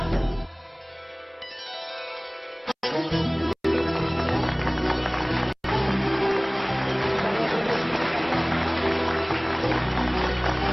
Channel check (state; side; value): identical; both; correlation 1.00